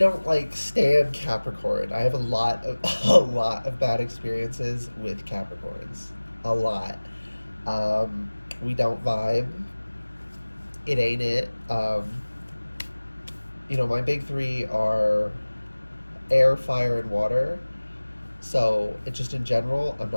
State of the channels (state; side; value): inverted; both; correlation -1.00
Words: like stand Capricorn. I have a lot of bad experiences with Capricorns. A lot. We don't vibe. It ain't it. My big three are air, fire, and water. So it just in general, I'm